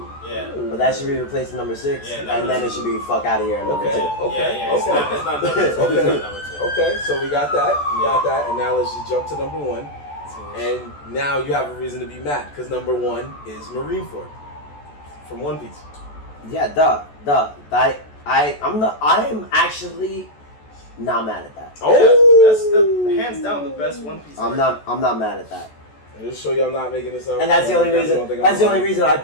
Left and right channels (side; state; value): right; late; 14 ms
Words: Yeah. But that should be replaced with number 6, Yeah, and then it should be fuck out of here. Number 2. Yeah, it's not number 2. It's not number 2. Okay, so we got that, and now let's just jump to number 1. And now you have a reason to be mad because number 1 is Marineford from One Piece. Yeah, duh. I am actually not mad at that. Oh, That's the hands down the best One Piece. I'm not mad at that. And just show you I'm not making this up. And that's the only You guys reason. don't think I'm That's the only lying. reason